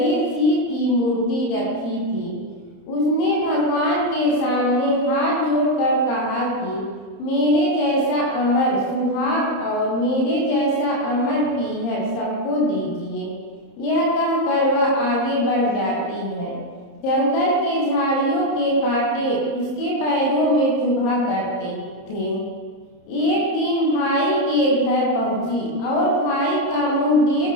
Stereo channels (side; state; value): right; late; 30 ms